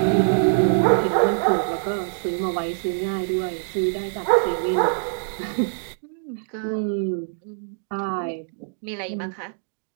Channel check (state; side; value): silent; left; digital silence